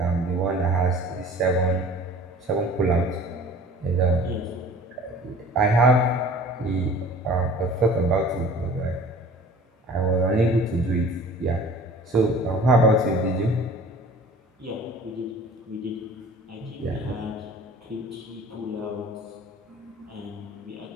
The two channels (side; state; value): both; normal; correlation 0.45